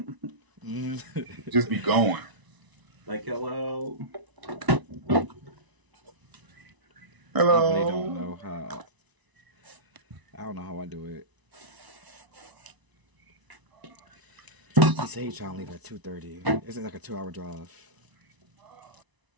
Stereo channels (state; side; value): late; left; 1.0 ms